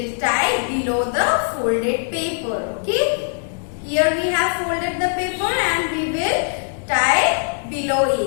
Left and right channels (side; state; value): right; silent; digital silence